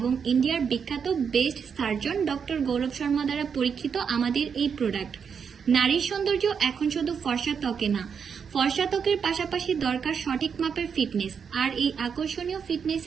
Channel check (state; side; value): quieter; left; 6.7 dB